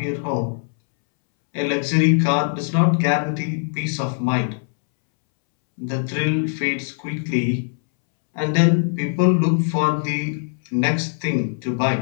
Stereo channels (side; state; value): right; silent; 65 dB below the other